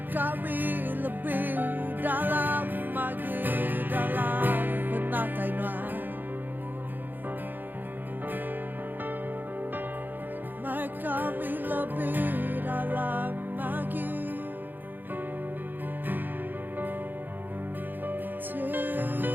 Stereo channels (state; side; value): late; left; 0.090 ms